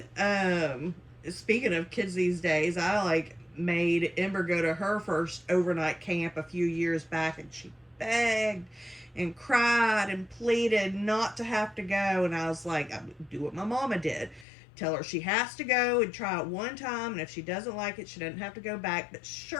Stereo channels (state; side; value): drops out; right; at 14.5 s